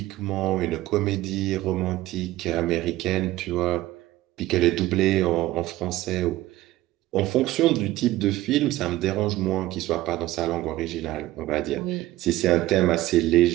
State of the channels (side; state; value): left; quieter; 16.3 dB